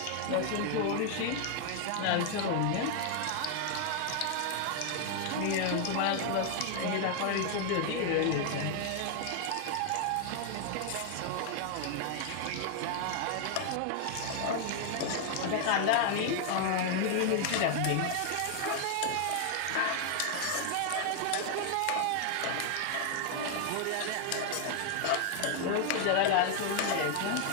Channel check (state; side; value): different; both; correlation 0.00